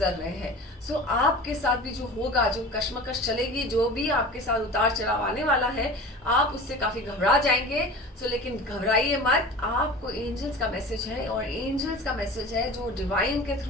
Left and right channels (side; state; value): both; normal; correlation 0.36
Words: रहे हैं। सो आपके साथ भी जो होगा, जो कश्मकश चलेगी, जो भी आपके साथ उतार चढ़ाव आने वाला है, आप उससे काफी घबरा जाएंगे। सो लेकिन घबराइए मत, आपको एंजल्स का मैसेज है, और एंजल्स का मैसेज है जो डिवाइन के